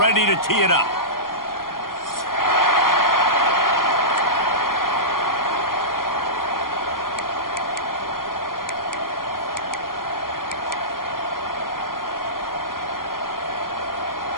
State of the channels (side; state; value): right; late; 0.91 ms